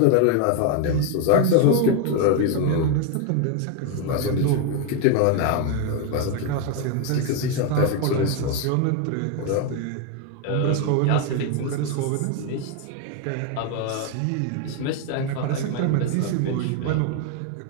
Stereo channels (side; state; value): both; different; correlation 0.01